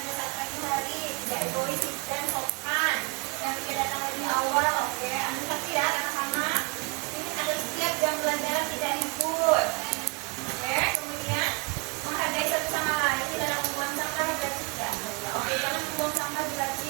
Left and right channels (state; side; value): quieter; left; 30.3 dB